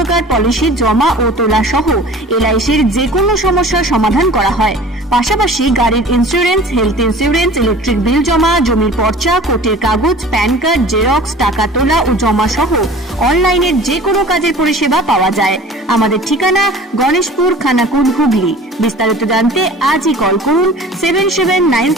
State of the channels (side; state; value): both; normal; correlation 0.43